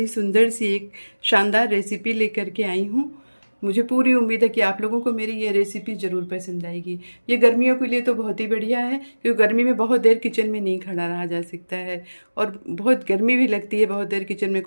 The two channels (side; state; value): both; inverted; correlation -1.00